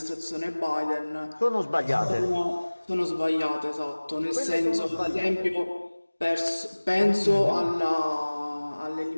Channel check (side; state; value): both; inverted; correlation -1.00